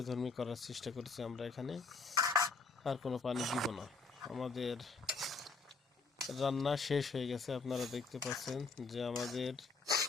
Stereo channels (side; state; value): right; quieter; 4.2 dB